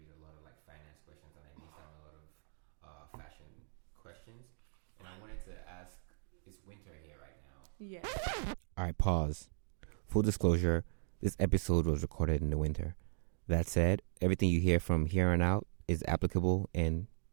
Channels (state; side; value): silent; left; 53 dB below the other